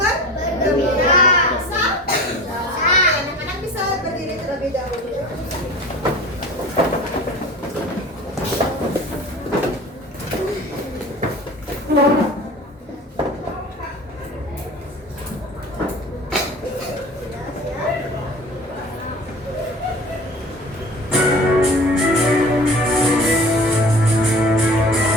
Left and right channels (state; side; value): normal; both; correlation 0.39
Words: bergembira. Bisa? Anak-anak bisa berdiri terlebih dahulu.